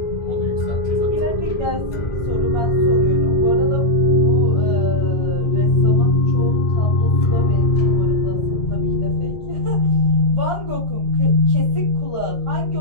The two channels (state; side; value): late; right; 2.0 ms